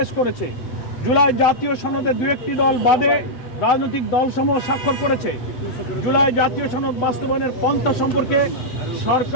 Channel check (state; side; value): late; right; 8.1 ms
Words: করেছে। জুলাই জাতীয় সনদে 2-1টি দল বাদে রাজনৈতিক দলসমূহ স্বাক্ষর করেছে। জুলাই জাতীয় সনদ বাস্তবায়নের পন্থা সম্পর্কে